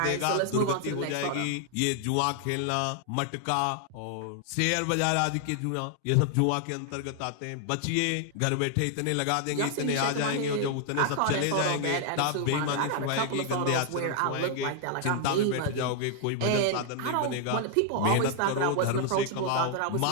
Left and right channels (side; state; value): both; different; correlation 0.00